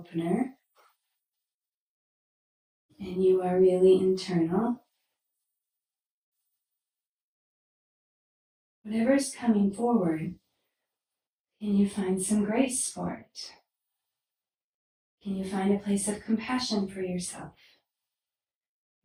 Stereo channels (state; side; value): identical; both; correlation 1.00